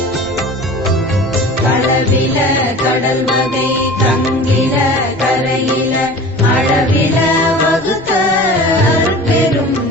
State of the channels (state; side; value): noise; left; rumble, 23 dB below the sound